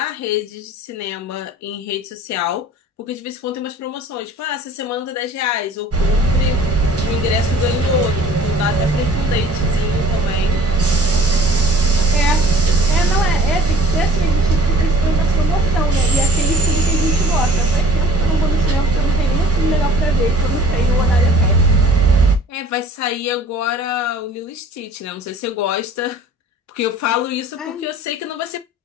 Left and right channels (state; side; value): normal; both; correlation 0.50